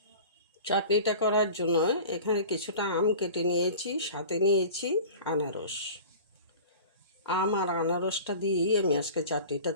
চাটনিটা করার জন্য এখানে কিছুটা আম কেটে নিয়েছি, সাথে নিয়েছি আনারস। আম আর আনারসটা দিয়েই আমি আজকে চাটনিটা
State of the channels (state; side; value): inverted; both; correlation -0.39